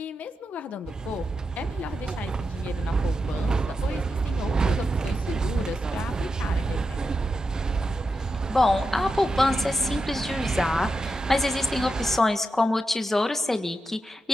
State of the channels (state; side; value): normal; both; correlation 0.88